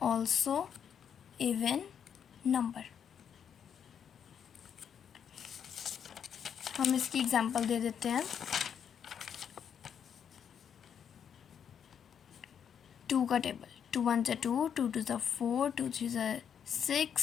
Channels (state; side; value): quieter; right; 8.0 dB